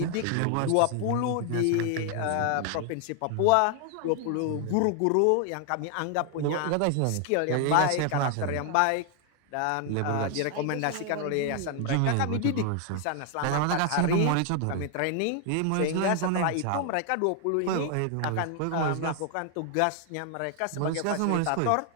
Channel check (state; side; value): different; both; correlation 0.00